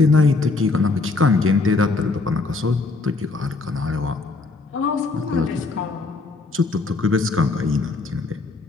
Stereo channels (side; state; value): right; quieter; 3.8 dB